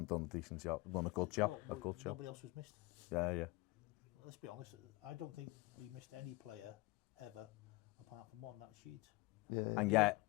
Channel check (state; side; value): quieter; right; 22.4 dB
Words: done a decent job, done a good job. Nobody else was missed. Yeah. Let's be honest, I don't think we missed any player ever apart from one, that was Sheeds. Yeah. And yet,